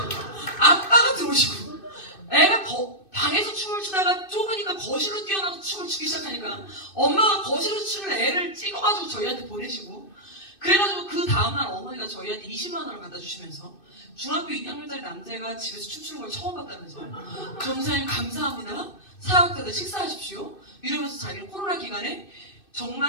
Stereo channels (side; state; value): right; late; 2.6 ms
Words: 아빠가 들어오시고, 애가 방에서 춤을 추다가 좁으니까 거실로 뛰어나서 춤을 추기 시작하니까 엄마가 거실에서 추는 애를 찍어가지고 저희한테 보내시고, 그래가지고 그 다음날 어머니가 저희한테 20만 원을 갖다 주시면서 중학교 2학년짜리 남자애가 집에서 춤추는 걸 처음 봤다면서 전사님 감사합니다, 사역자들 식사하십시오 이러면서 자기는 코로나 기간에